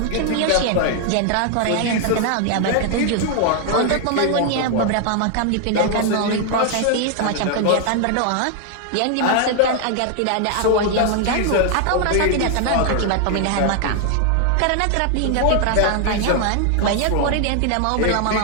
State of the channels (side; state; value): both; different; correlation 0.00